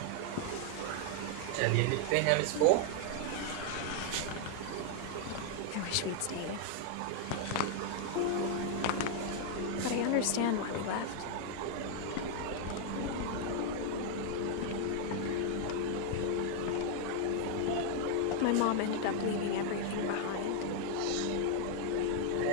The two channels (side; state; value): both; different; correlation 0.00